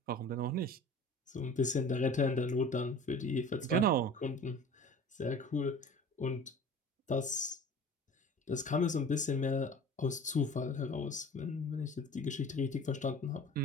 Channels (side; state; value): both; normal; correlation 0.42